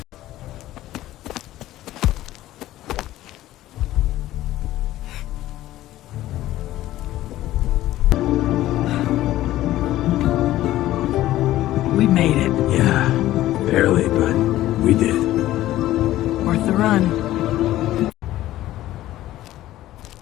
We made it. Yeah, barely, but we did. Worth the run.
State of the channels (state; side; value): quieter; right; 14.8 dB